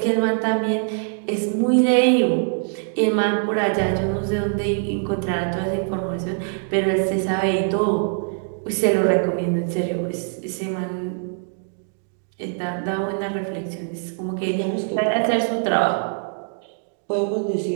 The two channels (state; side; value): silent; left; 63 dB below the other